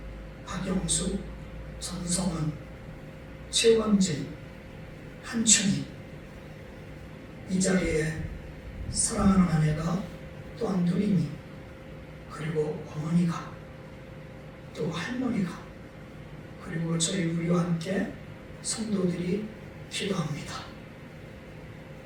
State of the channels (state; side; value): identical; both; correlation 1.00